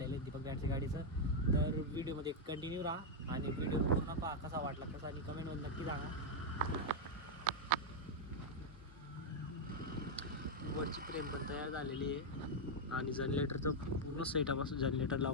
आहे दीपक बँडच्या गाडीचं. तर व्हिडिओमध्ये कंटिन्यू राहा आणि व्हिडिओ पूर्ण पहा, कसा वाटला कसा, आणि कमेंटमध्ये नक्की सांगा. वरची फ्रेम पण तयार झालेली आहे आणि जनरेटरचं पूर्ण सेटअप असं जनरेटर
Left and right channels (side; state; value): both; normal; correlation -0.01